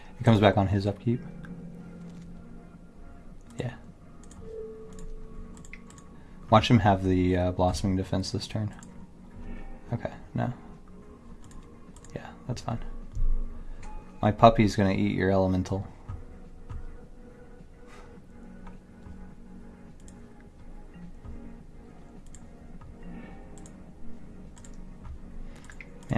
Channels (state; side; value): identical; both; correlation 1.00